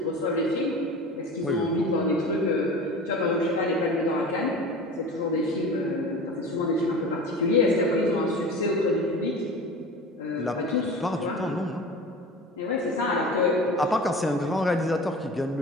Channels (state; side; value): normal; both; correlation 0.35